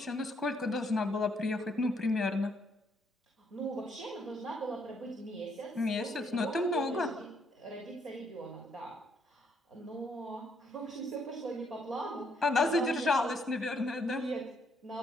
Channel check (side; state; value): both; normal; correlation 0.71